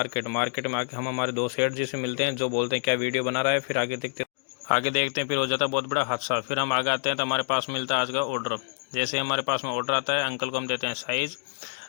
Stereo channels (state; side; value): silent; right; digital silence